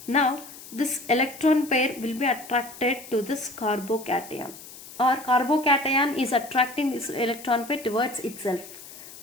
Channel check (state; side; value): noise; left; hiss, 16 dB below the sound